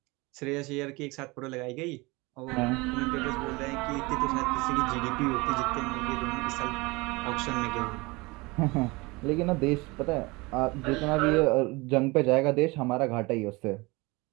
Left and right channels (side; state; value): left; quieter; 24.2 dB